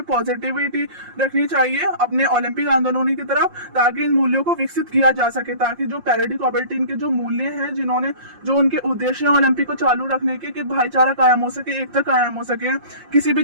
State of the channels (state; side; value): late; left; 5.7 ms